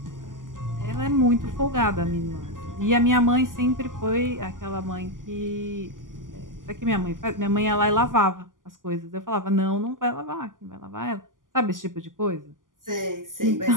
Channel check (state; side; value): late; left; 0.89 ms